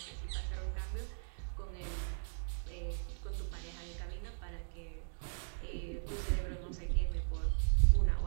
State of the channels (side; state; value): left; silent; digital silence